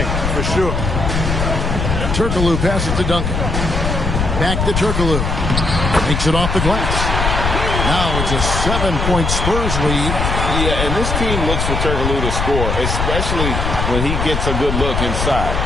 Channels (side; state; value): left; noise; rumble, 1 dB below the sound